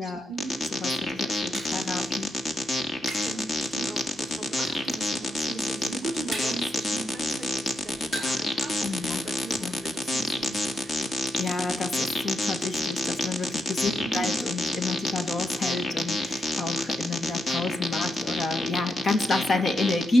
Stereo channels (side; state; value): both; normal; correlation 0.82